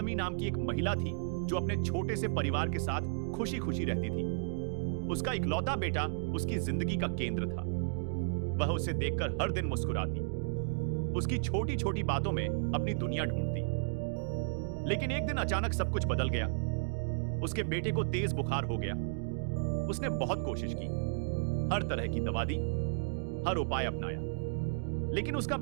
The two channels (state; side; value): silent; left; digital silence